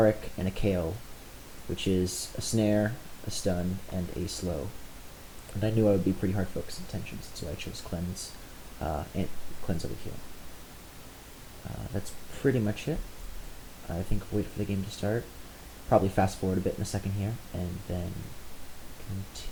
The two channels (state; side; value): identical; both; correlation 1.00